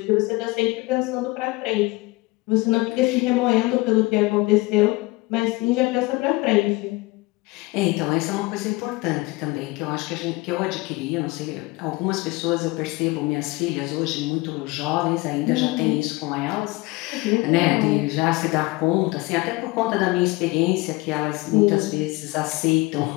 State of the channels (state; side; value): quieter; right; 22.5 dB